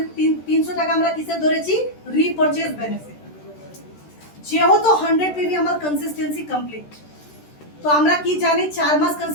300 টাকা আমরা কিসে ধরেছি? রিপারচেজ বেনিফিট। যেহেতু 100 পিভি আমার কনসিস্টেন্সি কমপ্লিট, তো আমরা কি জানি 4 মাস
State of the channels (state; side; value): late; right; 13 ms